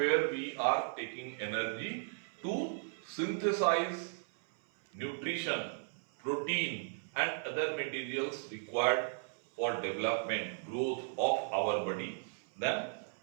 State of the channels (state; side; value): silent; left; 54 dB below the other